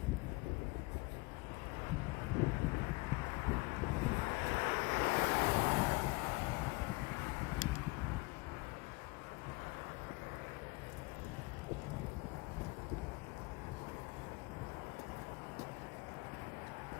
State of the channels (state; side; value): quieter; right; 26.4 dB